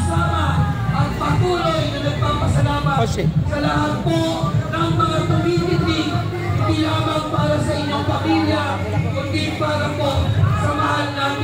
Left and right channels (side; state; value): both; identical; correlation 1.00